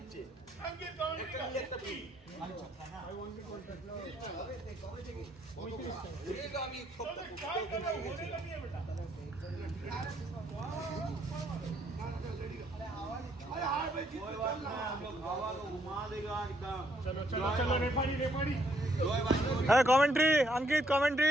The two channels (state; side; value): normal; both; correlation 0.71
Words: अंकित कमेंट একটা free I want to contact लो होगा আমি काय करो होने लगी है बेटा अरे हां भाई कोई बात नहीं हम लोग हवा को घुमा देगा एकदम चलो चलो चलो रेफरी जोय भाई Hey, commentary, Ankit,